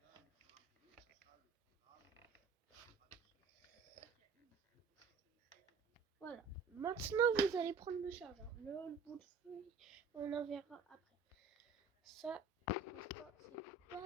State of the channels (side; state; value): left; quieter; 5.0 dB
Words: Voilà, maintenant vous allez prendre le chargeur, le bout de feuille, on en verra après. Ça,